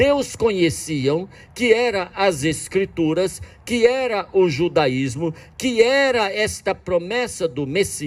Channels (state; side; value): identical; both; correlation 1.00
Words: conheciam, que era as Escrituras, que era o judaísmo, que era esta promessa do